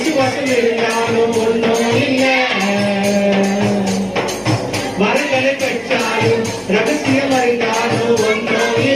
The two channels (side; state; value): both; identical; correlation 1.00